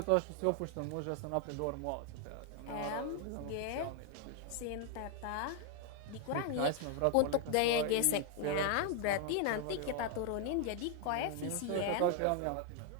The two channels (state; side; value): different; both; correlation 0.00